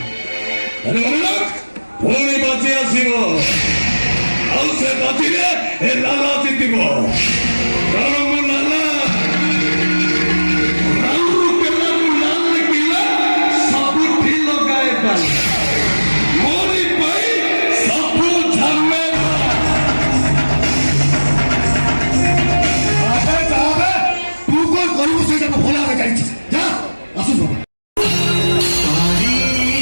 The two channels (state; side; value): inverted; both; correlation -1.00